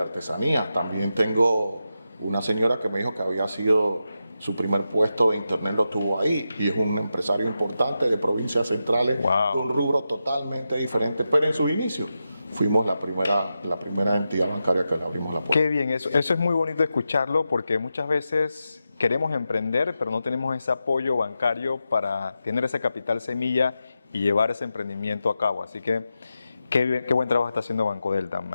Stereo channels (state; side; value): inverted; both; correlation -0.89